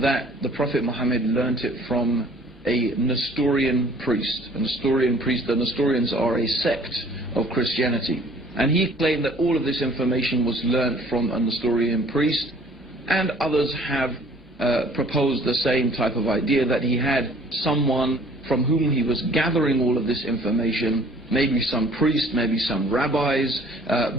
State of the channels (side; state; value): both; normal; correlation 0.54